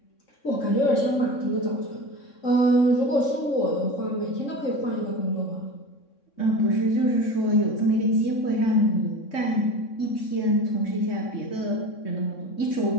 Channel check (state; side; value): late; right; 3.6 ms